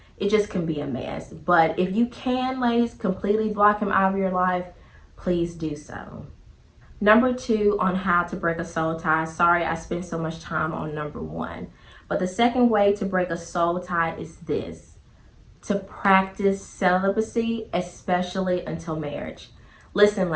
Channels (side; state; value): both; identical; correlation 1.00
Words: It just can be a mess. But if you can, ladies, completely block him out of your life, please do so. Number 2 on how to break a soul tie. Sorry I spent so much time on number 1. But the second way to break a soul tie is this: to practice celibacy, especially until marriage. Listen,